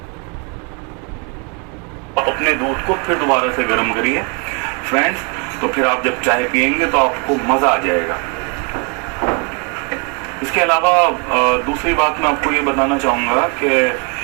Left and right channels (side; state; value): left; quieter; 33.8 dB